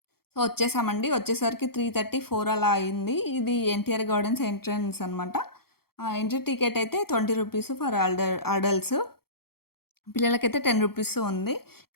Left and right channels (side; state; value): right; late; 0.94 ms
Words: సో, వచ్చేసామండి. వచ్చేసరికి 3:30, 4 అలా అయింది. ఇది ఎన్టీఆర్ గార్డెన్స్ ఎంట్రన్స్ అనమాట. ఎంట్రీ టికెట్ అయితే ₹20 ఫర్ అడల్ట్స్. పిల్లలకైతే ₹10 ఉంది.